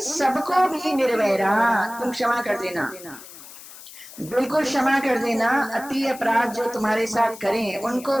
सबको भी निर्वैरा तुम क्षमा कर देना। बिल्कुल क्षमा कर देना। अति अपराध जो तुम्हारे साथ करें उनको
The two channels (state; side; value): noise; left; hiss, 17 dB below the sound